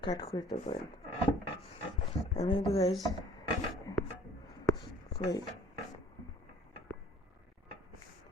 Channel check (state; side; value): normal; both; correlation 0.53